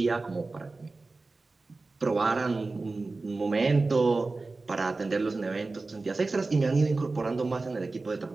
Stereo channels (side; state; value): left; quieter; 3.6 dB